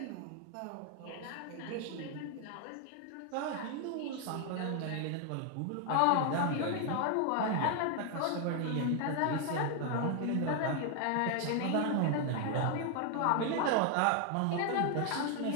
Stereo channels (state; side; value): different; both; correlation 0.00